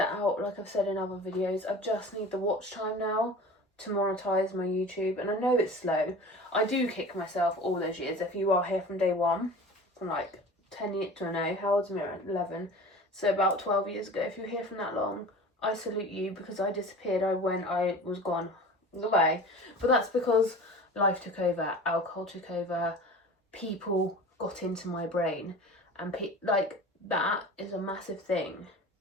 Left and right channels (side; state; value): both; normal; correlation 0.38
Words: out, like I've said in other videos. I just need the watch time now to monetize my YouTube, and I know it's slow. I do kick myself all those years. If you are here from day one, from like 10 years to no, how old's Mira? 11. So about 12 years ago, if you're here from that long, I salute you, because I disappeared. I was gone. Goodbye. But that's because life took over, alcohol took over, people got into my brain, and like that is a massive thing